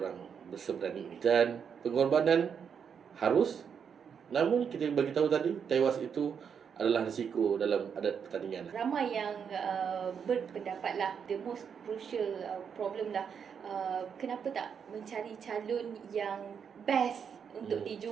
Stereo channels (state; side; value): quieter; left; 7.1 dB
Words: berseberani ini. Dan pengorbanan harus, namun kita bagi tahu tadi, tewas itu adalah risiko dalam adat pertandingan. Ramai yang berpendapat lah, the most crucial problem lah, kenapa tak mencari calon yang best untuk